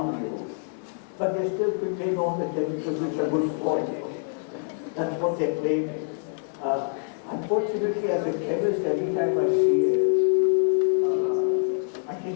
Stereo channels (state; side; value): silent; right; digital silence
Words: you, but they still contain all the chemicals which are good for you. That's what they're claiming. Unfortunately, as a chemist, every time I see it, I